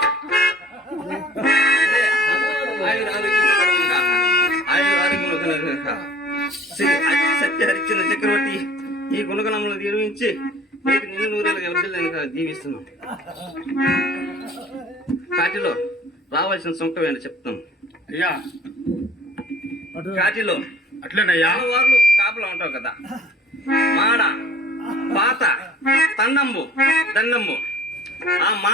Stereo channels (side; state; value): both; normal; correlation 0.49